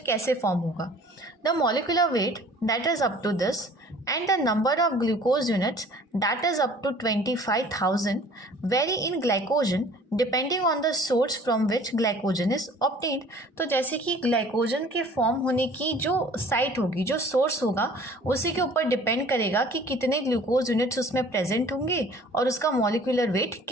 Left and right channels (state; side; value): normal; both; correlation 0.50